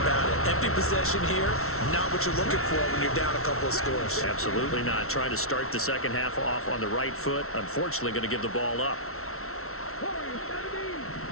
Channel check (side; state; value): right; late; 0.63 ms